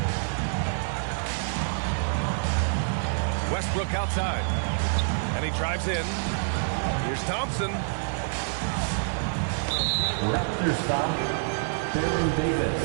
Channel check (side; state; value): left; silent; 60 dB below the other